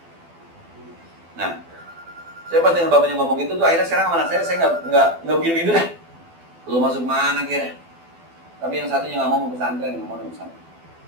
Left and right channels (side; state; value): left; late; 12 ms